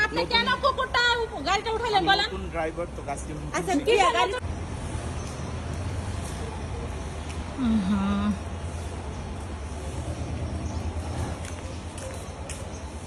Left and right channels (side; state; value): both; identical; correlation 1.00